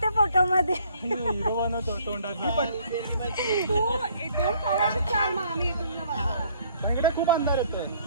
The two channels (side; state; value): both; inverted; correlation -0.61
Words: फोटो मध्ये. खूप अंधार येतोय.